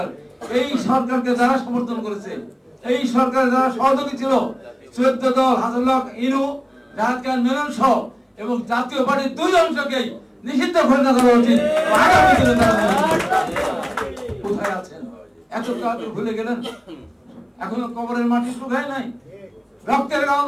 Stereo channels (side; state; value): both; identical; correlation 1.00